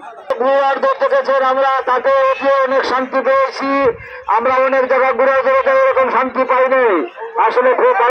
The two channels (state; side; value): identical; both; correlation 1.00